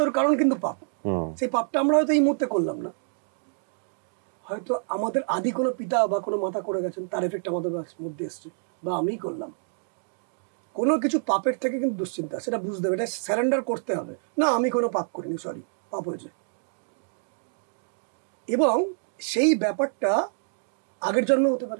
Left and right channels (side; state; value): left; silent; digital silence